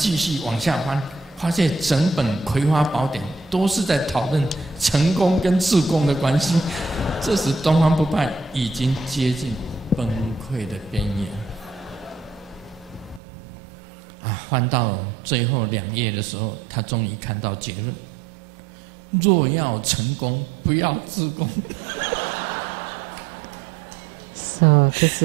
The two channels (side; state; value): left; drops out; at 13.2 s